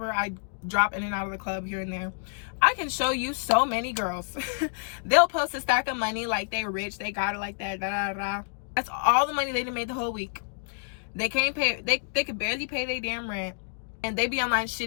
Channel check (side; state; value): right; silent; digital silence